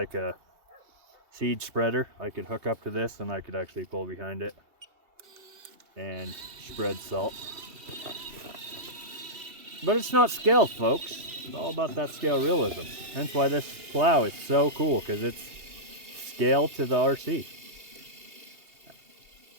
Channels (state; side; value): late; left; 2.7 ms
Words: a seed spreader I could hook up to this, and I could actually pull behind it and spread salt. But it's not scaled, folks. It's all about that scale realism. Hence why this plow is so cool, because it's scaled to the RC.